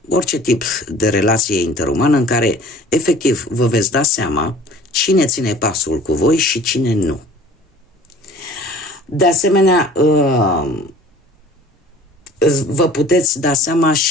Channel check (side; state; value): both; normal; correlation 0.47